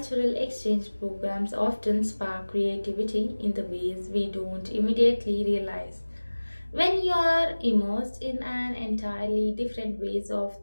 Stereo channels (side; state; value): both; inverted; correlation -1.00